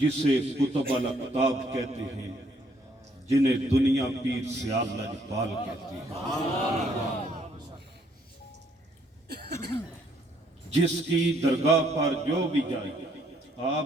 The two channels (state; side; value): normal; both; correlation 0.67